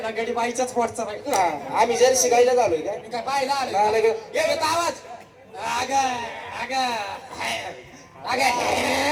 ना गडी बाईच्याच पोटचा बाई हा, आम्ही जर शिकायला झालोय काय मी काय बाईला आले नाही, नाही. हे देतो आवाज अग अग अग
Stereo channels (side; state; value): both; identical; correlation 1.00